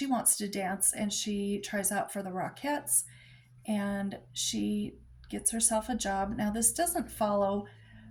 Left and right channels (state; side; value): identical; both; correlation 1.00